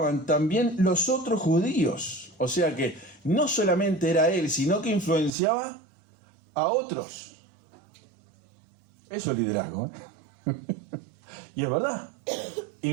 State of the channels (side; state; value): left; drops out; at 5.3 s